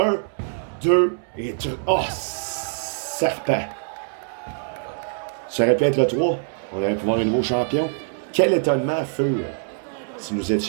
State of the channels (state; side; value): silent; left; 63 dB below the other